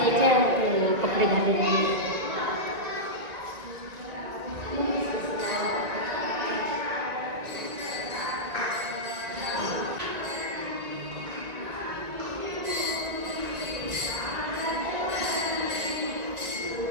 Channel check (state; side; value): late; left; 1.9 ms